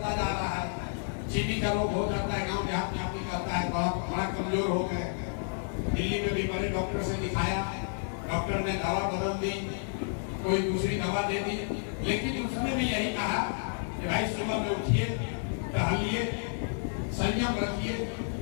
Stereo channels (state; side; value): silent; right; digital silence